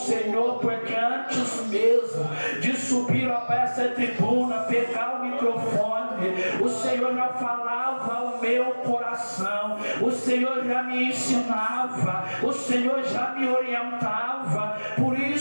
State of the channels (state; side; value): inverted; both; correlation -1.00